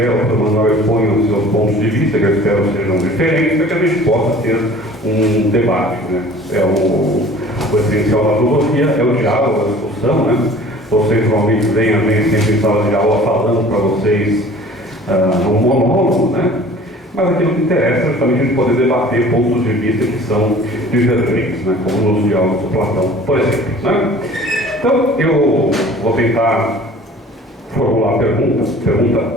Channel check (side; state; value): both; normal; correlation 0.47